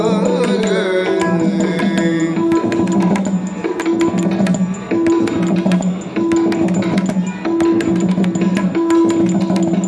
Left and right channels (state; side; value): identical; both; correlation 1.00